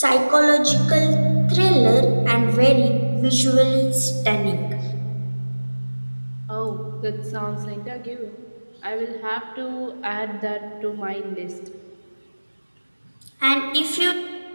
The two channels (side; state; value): both; inverted; correlation -1.00